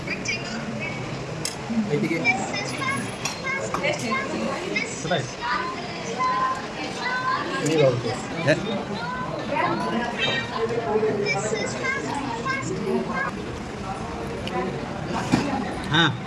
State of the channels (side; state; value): both; identical; correlation 1.00